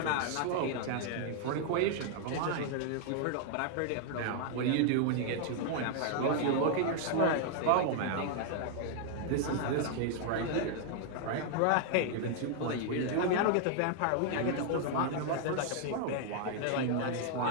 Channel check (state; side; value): different; both; correlation 0.00